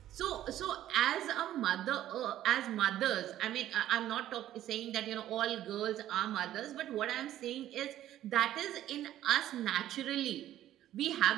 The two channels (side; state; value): left; quieter; 12.7 dB